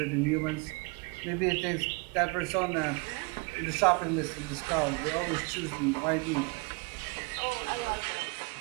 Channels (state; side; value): quieter; left; 29.1 dB